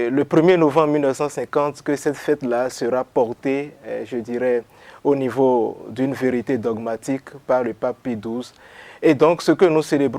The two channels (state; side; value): identical; both; correlation 1.00